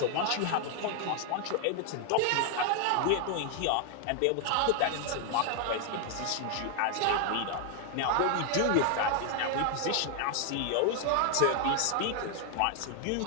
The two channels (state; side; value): different; both; correlation 0.00